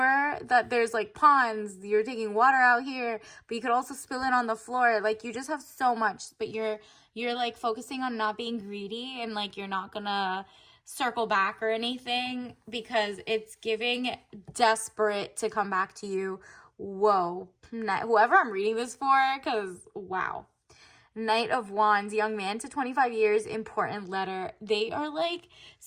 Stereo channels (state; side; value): identical; both; correlation 1.00